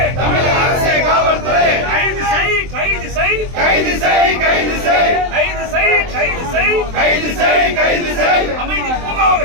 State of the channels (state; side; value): late; left; 23 ms